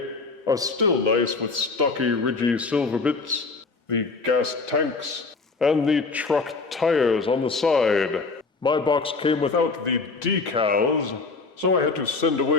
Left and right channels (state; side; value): quieter; right; 4.1 dB